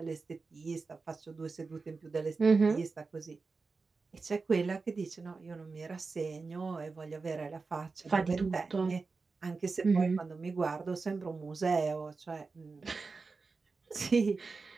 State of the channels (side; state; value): left; quieter; 4.3 dB